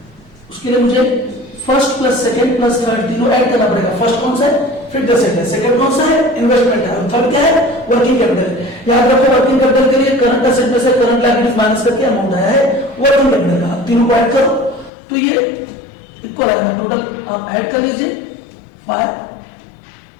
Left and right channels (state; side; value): drops out; right; at 14.9 s